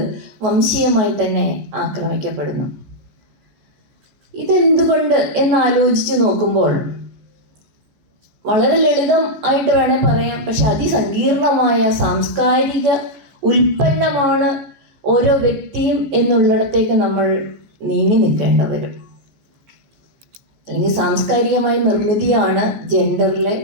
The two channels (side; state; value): left; late; 14 ms